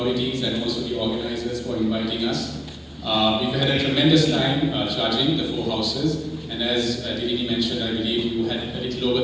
and also the organizers for inviting us. We've had a tremendous time judging the 4 houses, and as Dilini mentioned, I believe you had a little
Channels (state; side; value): identical; both; correlation 1.00